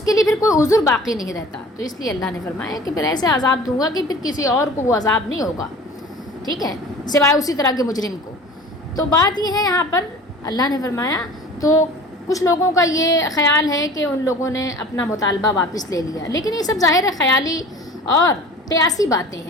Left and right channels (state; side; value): normal; both; correlation 0.42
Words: کے لیے پھر کوئی عذر باقی نہیں رہتا. تو اس لیے اللہ نے فرمایا کہ پھر ایسے عذاب دوں گا کہ پھر کسی اور کو وہ عذاب نہیں ہوگا. ٹھیک ہے، سوائے اسی طرح کے مجرم کو. تو بات یہ ہے یہاں پر اللہ نے فرمایا، تو کچھ لوگوں کا یہ خیال ہے کہ ان لوگوں نے اپنا مطالبہ واپس لے لیا، لیکن یہ سب ظاہر خیالی اور قیاسی باتیں